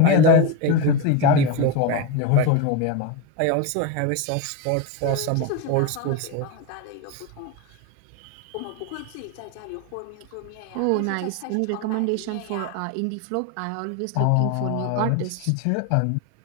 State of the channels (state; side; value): different; both; correlation 0.03